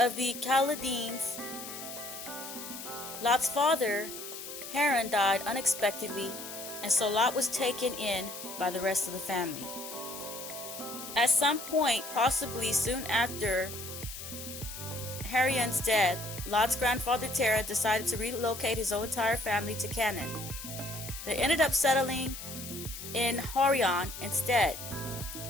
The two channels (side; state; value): left; noise; hiss, 10 dB below the sound